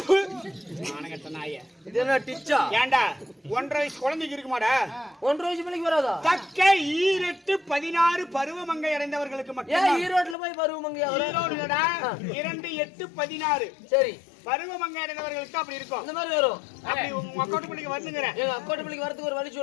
மானகட்ட நாயே. இது என்ன டிச்சா? ஏண்டா 1.5 வயசு குழந்தைக்கு இருக்குமாடா? 1.5 வயசு பிள்ளைக்கு வராதா? தக்க ஈரெட்டு 16 பருவமங்கை அடைந்தவர்களுக்கு மட்டும். ஏன் ஈரோட்ல போய் பருவமங்கை? ஈரோடுடா 2 8 16. சரி பருவமங்கை அடைந்தவர்களுக்கு அப்படி இருக்கும். இந்த மாதிரி வரும். அப்படி உங்க அக்கோட்டு பிள்ளைக்கு வந்துங்கறேன். எங்க அக்கோட்டு பிள்ளைக்கு வரதுக்கு ஒரு வழி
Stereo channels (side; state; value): right; drops out; at 10.4 s